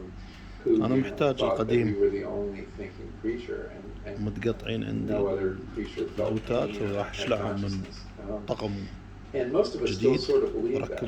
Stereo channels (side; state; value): both; identical; correlation 1.00